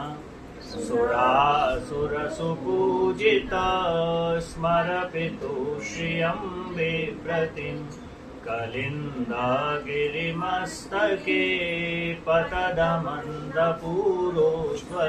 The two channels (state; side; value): identical; both; correlation 1.00